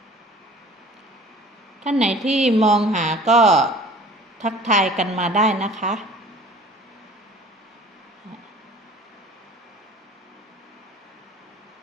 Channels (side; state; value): both; normal; correlation 0.46